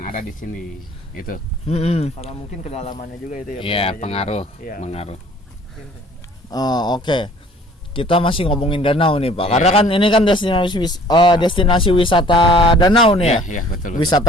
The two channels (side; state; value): both; normal; correlation 0.53